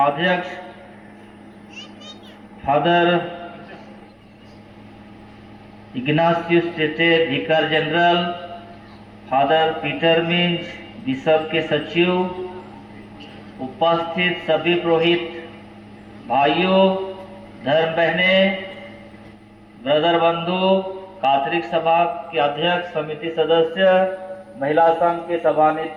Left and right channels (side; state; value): both; identical; correlation 1.00